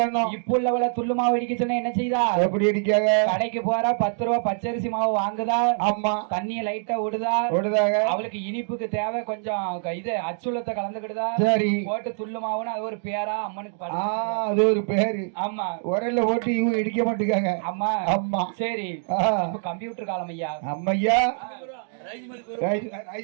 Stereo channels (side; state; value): left; silent; 62 dB below the other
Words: இப்ப உள்ளவள துள்ளு மாவு இடிக்க சொன்னா என்ன செய்தா? எப்படி இடிக்காக? கடைக்கு போறா 10 ரூபாய் பச்சரிசி மாவு வாங்குதா. அம்மா தண்ணிய லைட்டா விடுதாக. அவளுக்கு இனிப்புக்கு தேவை கொஞ்சம் இது அச்சுலத்தை கலந்துக்கிடுதா. சரி போட்டு துள்ளு மாவுன்னு அது ஒரு பேரா அம்மனுக்கு அது ஒரு பேரு. ஆமா உரல்ல போட்டு இவங்க இடிக்க மாட்டேங்காங்க. அம்மா சரி கம்ப்யூட்டர் காலம் ஐயா. அம்மையா